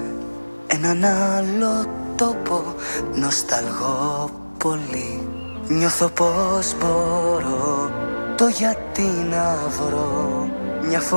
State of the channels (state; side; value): inverted; both; correlation -1.00